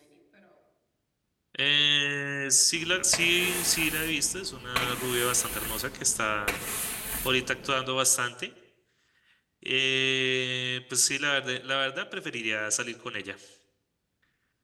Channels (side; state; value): both; identical; correlation 1.00